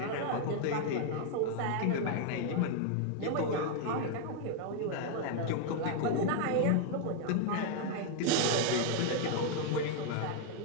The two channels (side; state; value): both; different; correlation 0.00